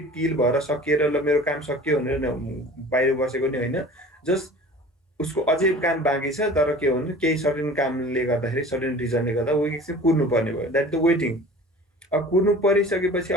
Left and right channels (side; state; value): both; normal; correlation 0.42